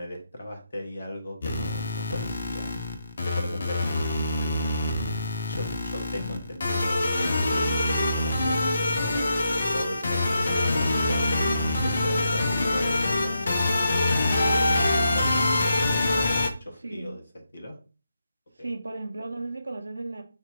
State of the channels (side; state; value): both; inverted; correlation -0.83